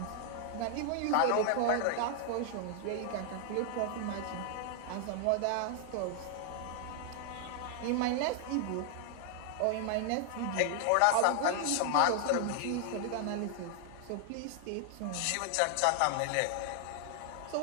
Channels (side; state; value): both; different; correlation 0.00